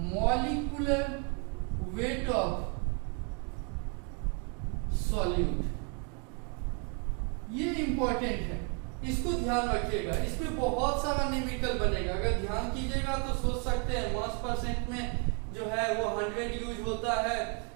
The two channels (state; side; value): quieter; left; 37.3 dB